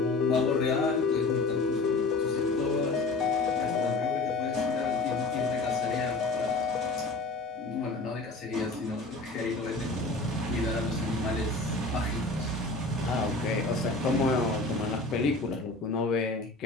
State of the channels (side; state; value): right; quieter; 3.3 dB